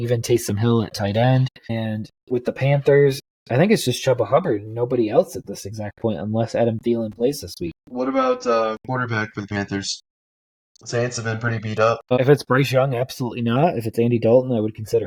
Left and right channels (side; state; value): both; identical; correlation 1.00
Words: Taysom Hill at tight end. And with the Panthers, I think it's just Chuba Hubbard and nobody else at this exact point unless Adam Thielen plays this week. What about quarterback for the Panthers? Saints have been pretty beat up. If it's Bryce Young, absolutely not. If it's Andy Dalton, I would